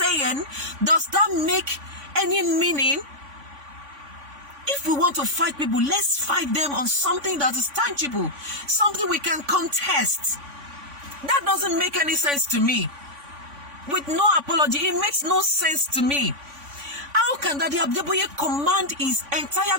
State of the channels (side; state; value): left; late; 3.5 ms